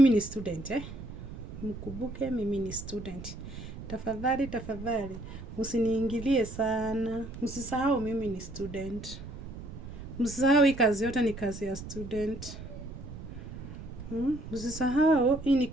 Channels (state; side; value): noise; right; rumble, 12 dB below the sound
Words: ni student, mkumbuke mimi ni student. Tafadhali msiniingilie sana. Msisahau mimi ni student. Msisahau hii kazi yote ni kazi ya student. Msisahau hii ni